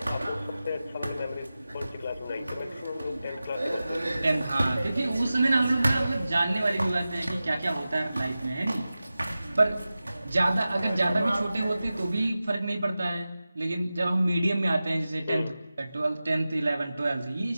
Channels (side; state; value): both; inverted; correlation -0.95